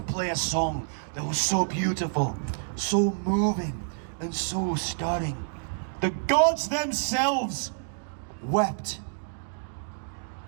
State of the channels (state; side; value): silent; left; digital silence